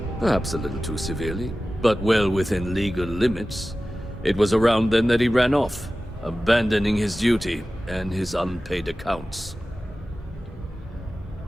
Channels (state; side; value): normal; both; correlation 0.95